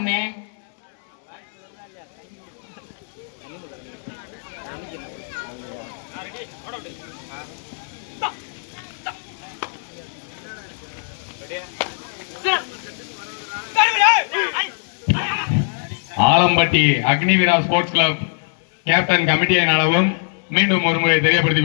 Alampatti Agniveera sports club captain கமிட்டியை நடவும் மீண்டும் ஒருமுறை தெரியப்படுத்திக்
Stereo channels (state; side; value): silent; right; digital silence